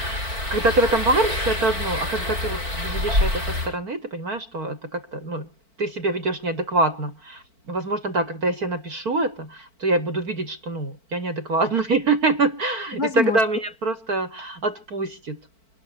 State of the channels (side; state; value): left; late; 4.5 ms